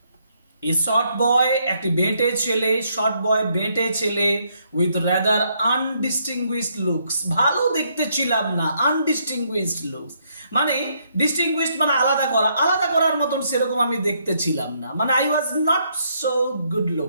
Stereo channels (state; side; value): inverted; both; correlation -0.73